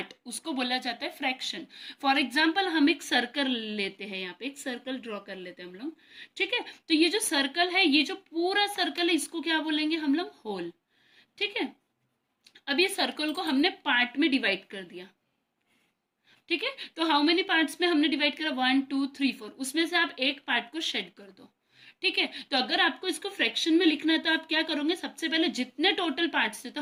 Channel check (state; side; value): identical; both; correlation 1.00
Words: उसको बोला जाता है फ्रैक्शन। फॉर एग्जाम्पल हम एक सर्कल लेते हैं, यहाँ पे एक सर्कल ड्रॉ कर लेते हैं हम लोग। ठीक है, तो ये जो सर्कल है, ये जो पूरा सर्कल है, इसको क्या बोलेंगे हम लोग, होल। ठीक है, अब ये सर्कल को हमने पार्ट में डिवाइड कर दिया। ठीक है, तो हाउ मेनी पार्ट्स में हमने डिवाइड करा, 1 2 3 4, उसमें से आप एक पार्ट को शेड कर दो। ठीक है, तो अगर आपको इसको फ्रैक्शन में लिखना है तो आप क्या करोगे, सबसे पहले जितने टोटल पार्ट्स थे, तो